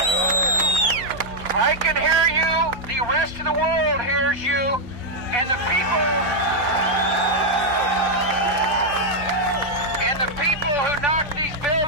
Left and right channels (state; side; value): normal; both; correlation -0.01